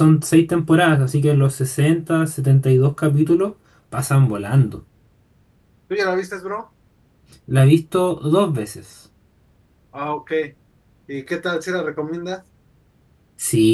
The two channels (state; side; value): identical; both; correlation 1.00